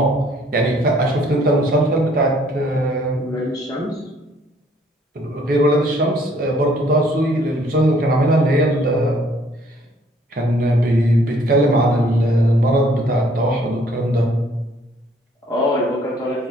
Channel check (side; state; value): both; normal; correlation 0.62